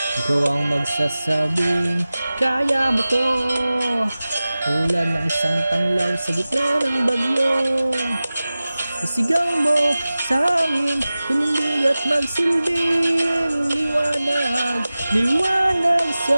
Ikaw ang magsasabing, kaya mo to, tulad ng isang tanglaw sa gitna ng bagyo. Isigaw mo sa amin, tumindig at magsilbing liwanag, liwanag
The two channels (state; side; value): inverted; both; correlation -0.96